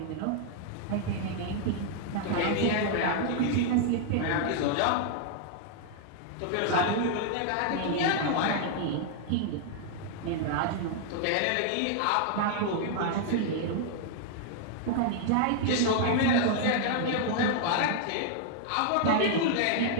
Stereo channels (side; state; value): both; different; correlation 0.00